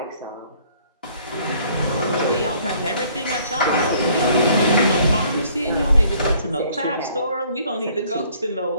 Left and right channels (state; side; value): inverted; both; correlation -0.60